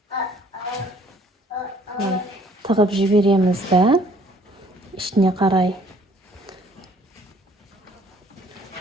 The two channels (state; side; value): normal; both; correlation 0.59